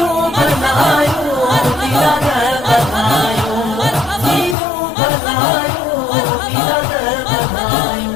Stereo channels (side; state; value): right; drops out; at 4.5 s